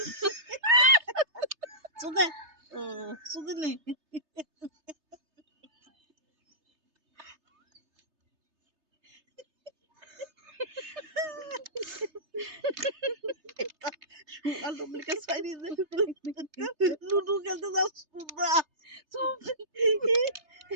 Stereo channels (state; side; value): late; left; 3.3 ms